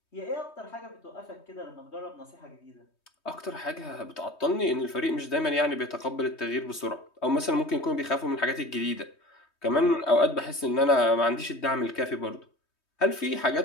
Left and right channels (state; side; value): late; right; 3.2 ms